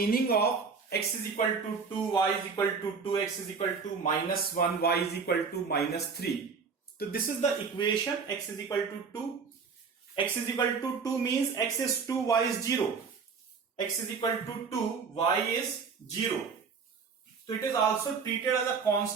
of x is equal to 2, y is equal to 2, x is equal to minus 1, y is equal to minus 3. So this is the equation, x is equal to 2. x is equal to 2 means x is 2, y is 0. X is equal to 2, y is 0. So it is also treated as a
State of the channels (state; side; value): quieter; left; 5.4 dB